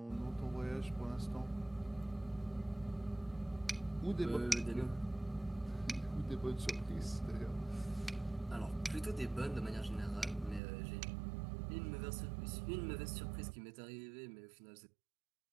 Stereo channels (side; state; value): left; drops out; at 10.6 s